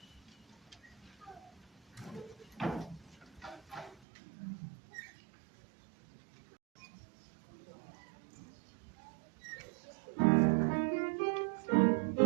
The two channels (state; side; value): drops out; left; at 4.0 s